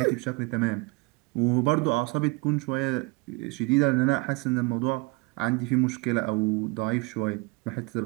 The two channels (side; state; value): left; quieter; 27.3 dB